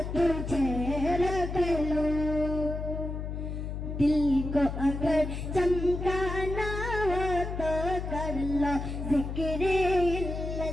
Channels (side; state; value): left; noise; hum, 5 dB below the sound